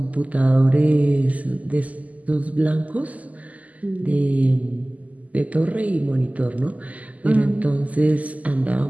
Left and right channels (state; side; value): late; left; 0.074 ms